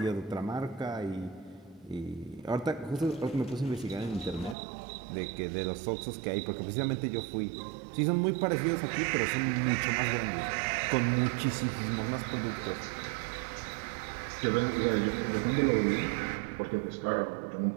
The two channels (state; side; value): drops out; left; at 4.5 s